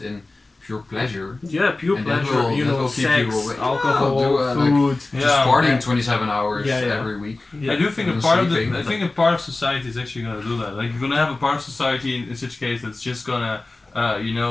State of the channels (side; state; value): right; quieter; 3.2 dB